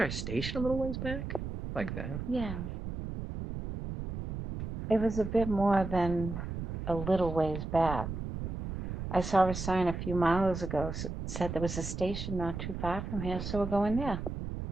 a station a little ways back? Like that? Yeah. It was a bit more than a little ways back. I saw a sign a few miles ago said there was a station not too far from here, so we're going there.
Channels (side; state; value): right; noise; rumble, 6 dB below the sound